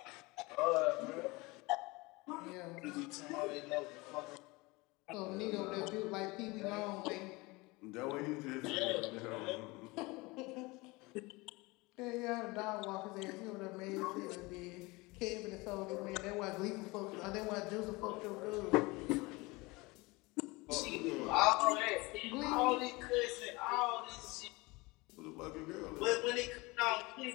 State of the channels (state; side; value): quieter; right; 23.8 dB